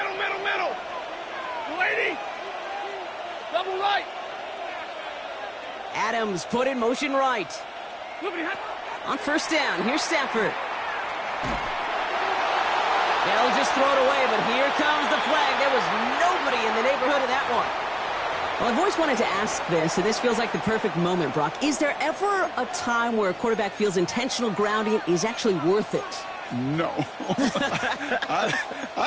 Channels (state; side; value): identical; both; correlation 1.00